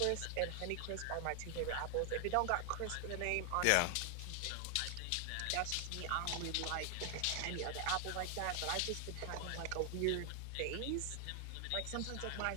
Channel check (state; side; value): different; both; correlation 0.00